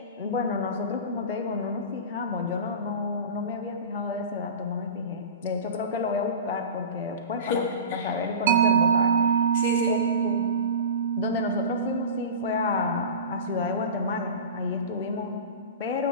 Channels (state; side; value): inverted; both; correlation -0.30